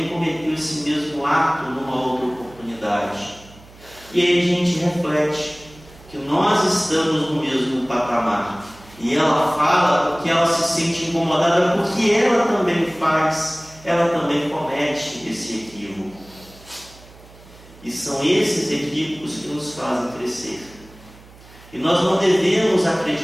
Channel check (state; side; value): noise; right; hum, 23 dB below the sound